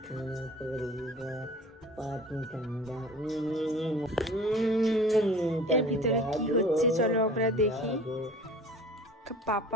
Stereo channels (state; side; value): normal; both; correlation 0.43